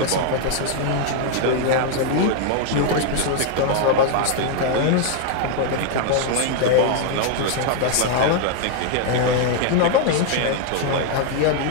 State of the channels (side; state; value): both; different; correlation 0.00